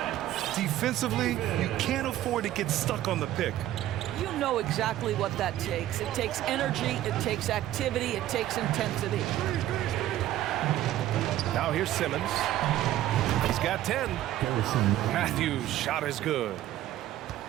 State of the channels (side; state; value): left; quieter; 13.5 dB